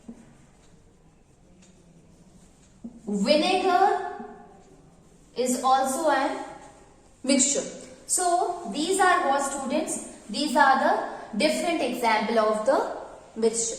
vinegar is also a mixture. So these are what, students? These are the different example of the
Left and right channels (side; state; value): both; identical; correlation 1.00